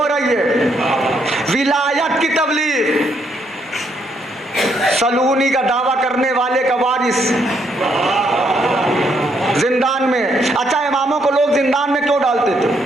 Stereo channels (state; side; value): normal; both; correlation 0.73